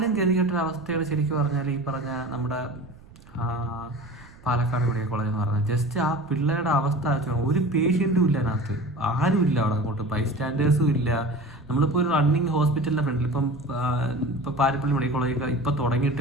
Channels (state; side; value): noise; right; rumble, 22 dB below the sound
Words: ഗതികെട്ടൊരവസ്ഥയാണ് ശരിക്കും പറഞ്ഞാൽ ഈ പറഞ്ഞ നമ്മുടെ പാലക്കാട് മെഡിക്കൽ കോളേജ് എന്ന് പറഞ്ഞാൽ. ജസ്റ്റ് ആ പിള്ളേരുടെ അവസ്ഥ ഒരു പേഷ്യൻറ്റും ഇല്ല അതിനകത്ത്, ആരും ഇല്ല അവിടെ. അങ്ങോട്ട് ബൈസ്റ്റാൻഡേഴ്സും ഇല്ല. നമ്മളിപ്പോൾ ഒരു റണ്ണിങ് ഹോസ്പിറ്റലിൻ്റെ ഫ്രണ്ടിൽ ഇപ്പോൾ പാരിപ്പള്ളി മെഡിക്കൽ കോളേജ് ഇപ്പോൾ